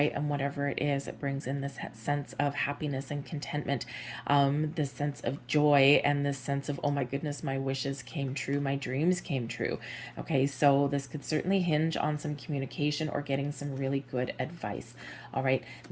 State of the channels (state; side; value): identical; both; correlation 1.00